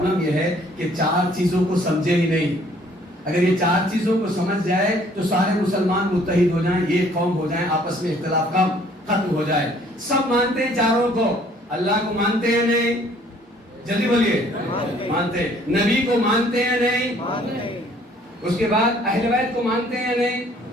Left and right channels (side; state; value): both; normal; correlation 0.59